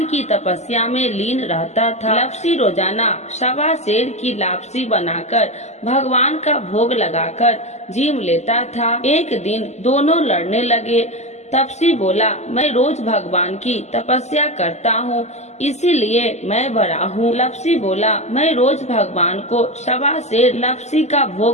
की तपस्या में लीन रहता था। लपसी रोजाना 1.25 सेर की लापसी बनाकर भगवान का भोग लगाकर जीम लेता था। एक दिन दोनों लड़ने लगे। तपसी बोला, मैं रोज भगवान की तपस्या करता हूँ, इसीलिए मैं बड़ा हूँ। लपसी बोला, मैं रोज भगवान को 1.25 सेर लपसी का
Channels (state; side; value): late; right; 0.33 ms